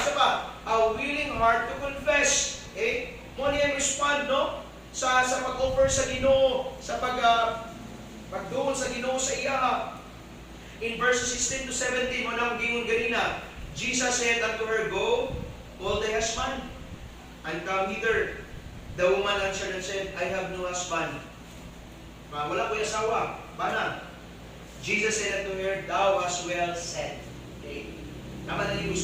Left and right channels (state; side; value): identical; both; correlation 1.00